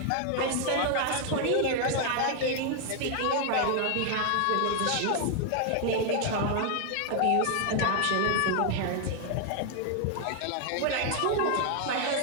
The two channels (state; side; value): different; both; correlation 0.00